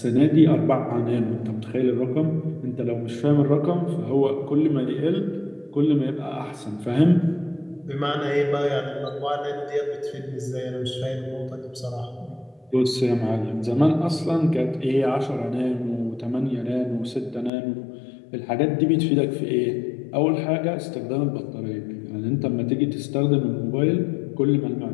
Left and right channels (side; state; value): right; drops out; at 17.5 s